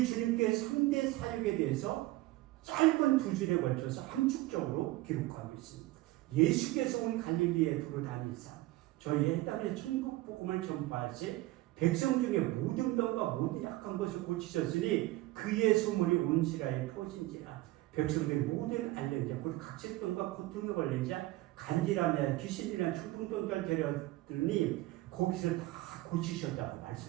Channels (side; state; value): left; quieter; 18.3 dB